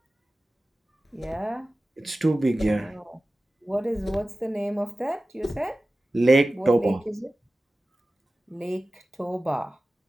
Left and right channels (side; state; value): both; normal; correlation 0.96